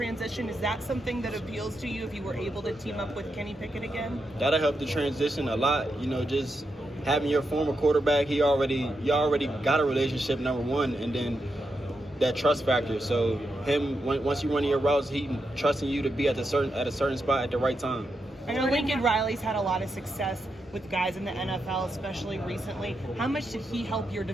Is that something that appeals to you if you were able to team up with Kenny Pickett again? That'll help the transition a lot. Just having your former quarterback, you already got a relationship, number one, and then that trust factor. So once you run your routes, he trusting you to be at a certain spot at the right time. I know Lincoln Riley's had a lot of success with guys in the NFL, especially recently. How much did he help your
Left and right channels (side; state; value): both; normal; correlation 0.85